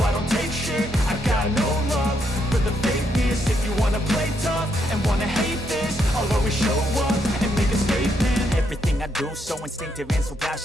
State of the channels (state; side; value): normal; both; correlation 0.76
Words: don't take shit. I got no love for the fakeness. If you wanna play tough and wanna hate this, I'll always show up and make a statement. Everything I do so instinctive and so